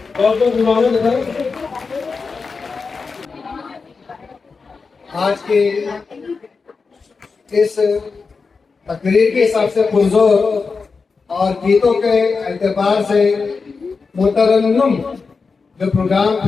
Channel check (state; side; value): quieter; right; 4.7 dB